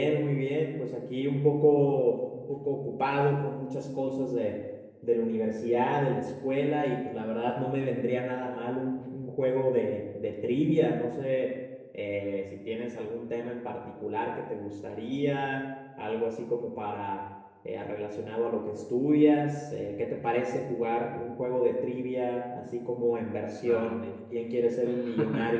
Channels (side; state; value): both; identical; correlation 1.00